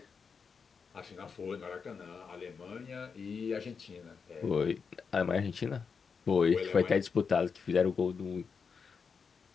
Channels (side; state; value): right; quieter; 5.7 dB